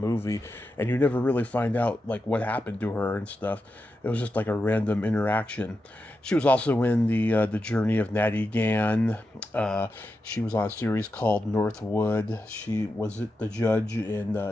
and you never really find out like what happened to her and stuff. It was just like a random interaction. She was also in the Journey of Natty Gann. She was on a series called Northwood. She was the judge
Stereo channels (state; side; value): normal; both; correlation 0.89